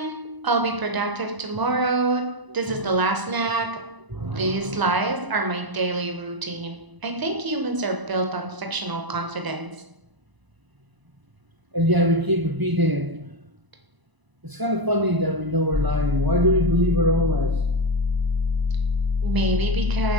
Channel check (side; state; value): left; late; 1.0 ms